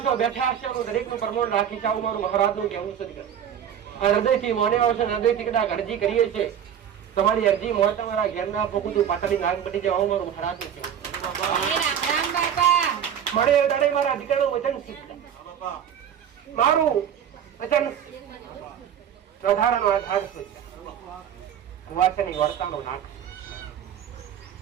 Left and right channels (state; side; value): quieter; left; 9.1 dB